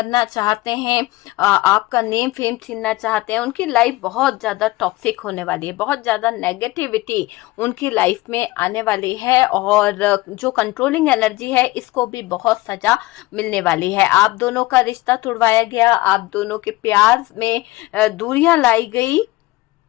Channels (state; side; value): quieter; right; 19.7 dB